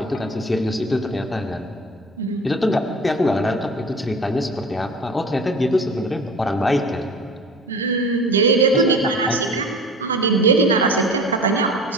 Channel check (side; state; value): both; normal; correlation 0.39